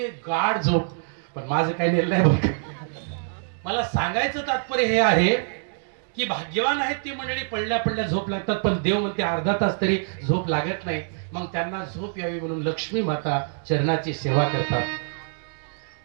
गाढ झोप. पण माझं काही नेलं नाही बघ. मला सांगायचं तात्पर्य हे आहे की भाग्यवान आहेत ती मंडळी, पडल्या पडल्या झोप लागतात. पण देव म्हणते अर्धा तास तरी झोप लागत नाही. मग त्यांना झोप यावी म्हणून लक्ष्मी माता चरणाची सेवा करतात.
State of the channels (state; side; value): silent; left; digital silence